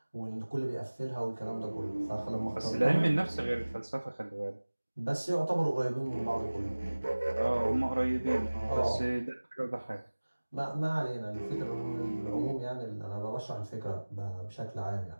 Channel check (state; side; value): inverted; both; correlation -1.00